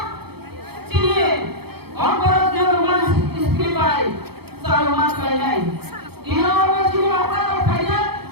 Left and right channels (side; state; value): left; late; 0.96 ms